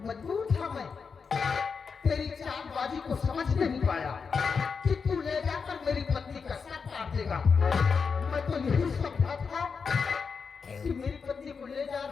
मजबूर था मैं, तेरी चालबाजी को समझ नहीं पाया कि तू ले जाकर मेरी पत्नी का सर काट देगा। मैं तो मेरी पत्नी को ले जा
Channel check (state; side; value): quieter; right; 5.5 dB